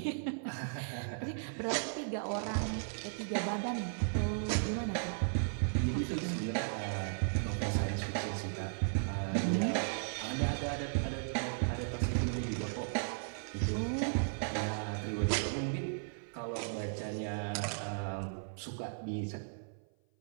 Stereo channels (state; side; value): silent; left; 54 dB below the other